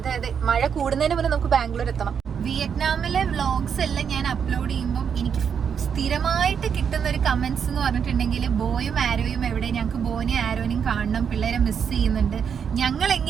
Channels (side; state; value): left; quieter; 7.3 dB